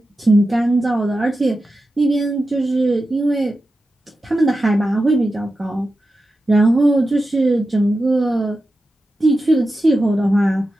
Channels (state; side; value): normal; both; correlation 0.92